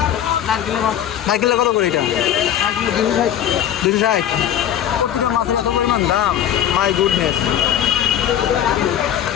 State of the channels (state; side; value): quieter; right; 10.4 dB